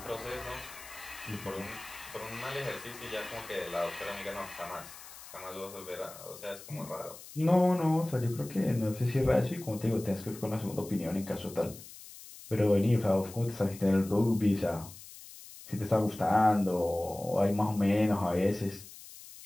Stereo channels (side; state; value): left; noise; hiss, 16 dB below the sound